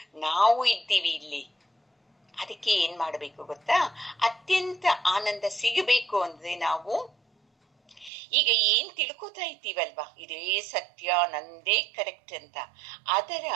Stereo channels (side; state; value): left; drops out; at 8.1 s